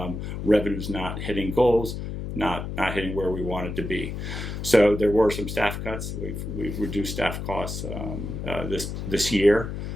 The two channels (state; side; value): noise; left; hum, 6 dB below the sound